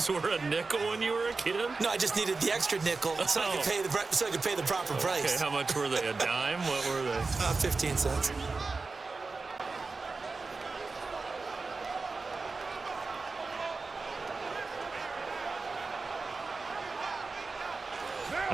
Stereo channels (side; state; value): left; quieter; 4.0 dB